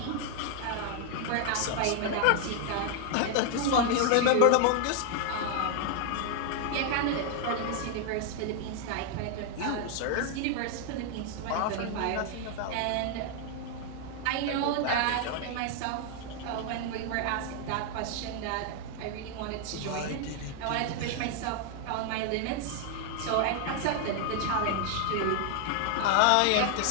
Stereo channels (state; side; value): different; both; correlation 0.00